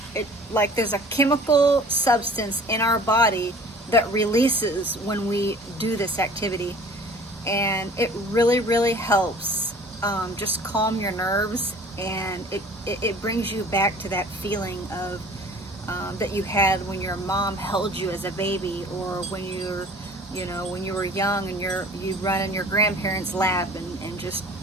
Like there's a chemical substance in our body that releases when we do this activity, and it really helps just calm your nerves, and it brings you back to that feeling of that you had when your mom held you as a baby, or when when you were young and you run in your grandparents' lap and just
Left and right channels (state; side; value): normal; both; correlation 0.48